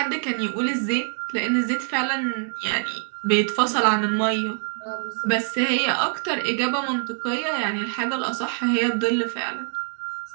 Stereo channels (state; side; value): silent; left; 58 dB below the other